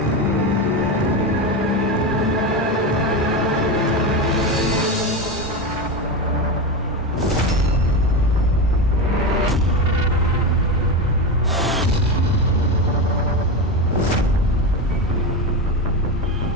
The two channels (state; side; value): normal; both; correlation 0.17